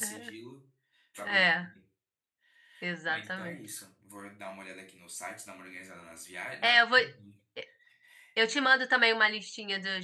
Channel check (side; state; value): both; identical; correlation 1.00